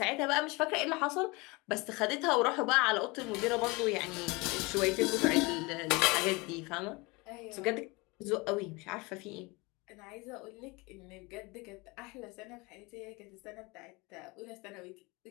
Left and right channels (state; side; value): quieter; right; 25.4 dB